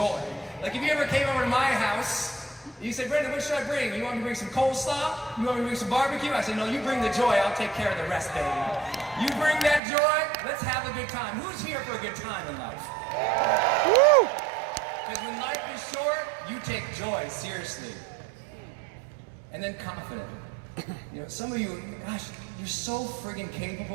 Like if you ever came over to my house, you say, Brendon, what should I bring? You want me to bring some coleslaw? You want me to bring some barbecue? I say, no, you bring the joy. I'll take care of the rest, baby. You bring that joy. Let's have a good time. Who's here for a good time in life? Woo! Because when life is short, you take joy seriously. And then confident. You know, some of you, gosh, you're so friggin'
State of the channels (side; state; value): left; drops out; at 9.8 s